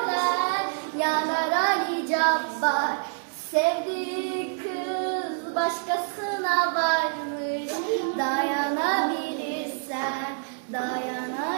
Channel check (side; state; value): left; silent; digital silence